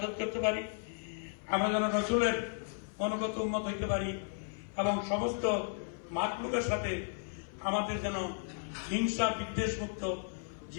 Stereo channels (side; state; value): right; silent; 55 dB below the other